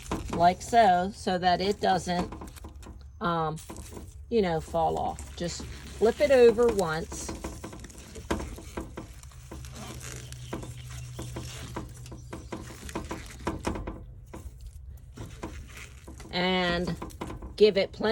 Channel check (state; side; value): identical; both; correlation 1.00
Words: Like so, so that it doesn't, fall off. Just flip it over once. And give it